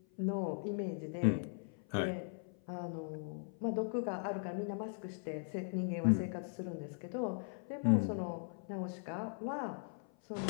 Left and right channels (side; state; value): right; silent; 52 dB below the other